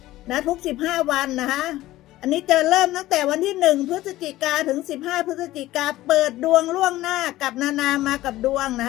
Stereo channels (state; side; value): quieter; right; 16.2 dB